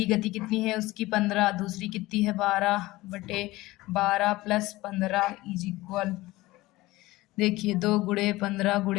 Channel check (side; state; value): right; quieter; 19.0 dB